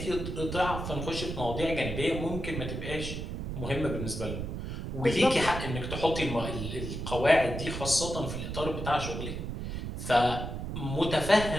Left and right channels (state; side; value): noise; right; rumble, 5 dB below the sound